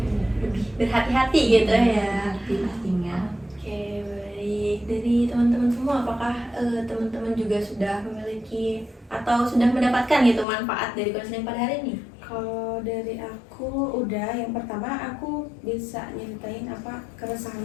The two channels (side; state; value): right; drops out; at 10.5 s